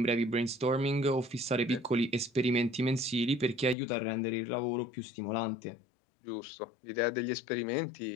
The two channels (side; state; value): right; drops out; at 3.8 s